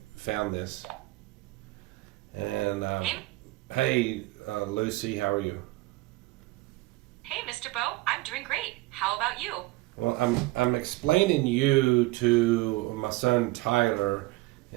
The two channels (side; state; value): left; quieter; 20.1 dB